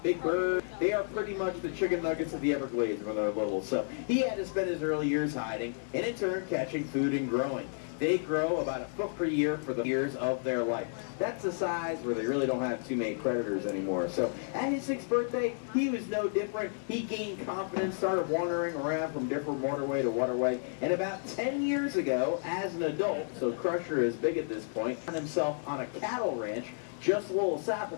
big birds, they are pretty much the chicken nuggets of the Everglades when they're little. So he had to spend his early years hiding, and in turn catching food and growing. They grow about a foot per year for the years of their life. That's the size where they really don't have too many predators anymore. So at his 6th birthday, he was no different. He gained confidence, started wandering around from different waterway to waterway. And about 10 years ago, as an adult, so Crusher is big at this point, found himself on a cattle ranch just a little south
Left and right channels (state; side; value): silent; right; digital silence